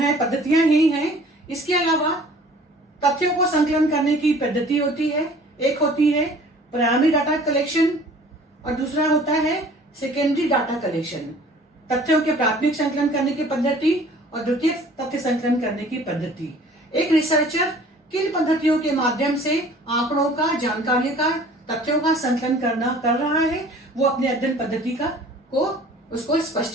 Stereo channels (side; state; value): both; normal; correlation 0.50